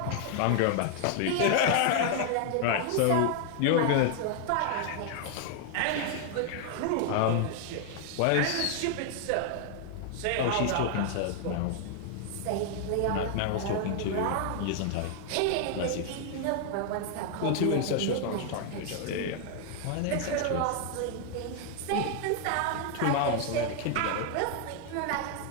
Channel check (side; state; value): both; different; correlation 0.00